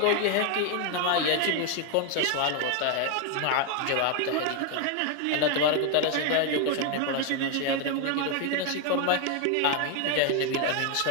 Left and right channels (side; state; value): both; different; correlation 0.01